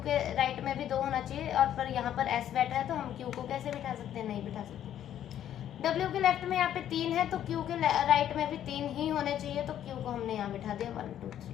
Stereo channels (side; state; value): right; quieter; 10.8 dB